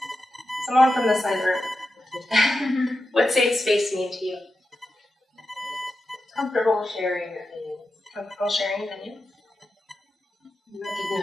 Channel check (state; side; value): normal; both; correlation 0.90